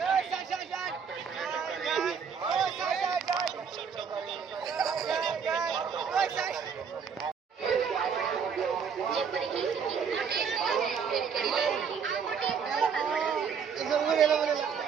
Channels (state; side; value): quieter; left; 6.6 dB